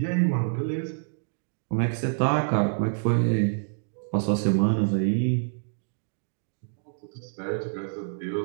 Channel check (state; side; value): silent; left; digital silence